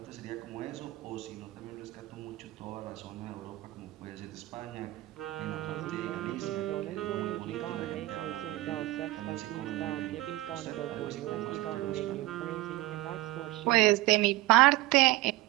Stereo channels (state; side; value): quieter; left; 18.2 dB